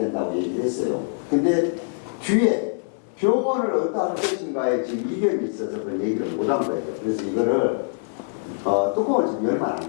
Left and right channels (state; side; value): silent; right; digital silence